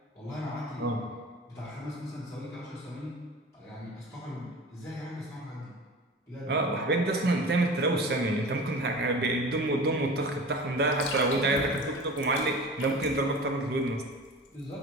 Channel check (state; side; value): normal; both; correlation 0.37